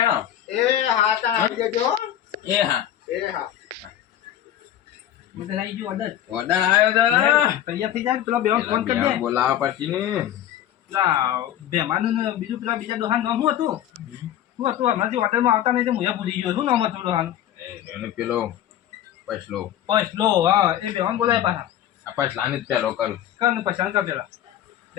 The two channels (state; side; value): quieter; right; 11.5 dB